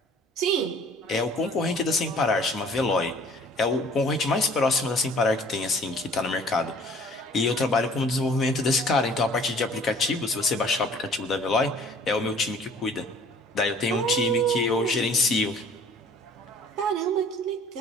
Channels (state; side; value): normal; both; correlation 0.53